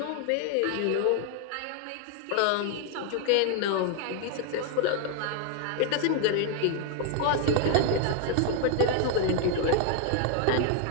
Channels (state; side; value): different; both; correlation 0.00